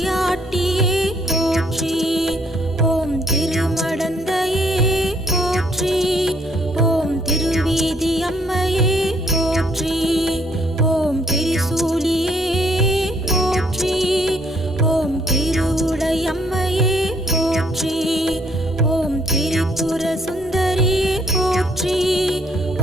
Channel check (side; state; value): both; normal; correlation 0.67